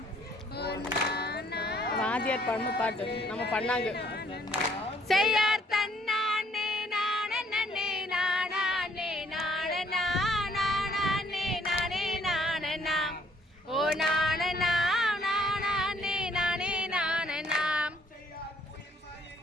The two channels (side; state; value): both; normal; correlation 0.64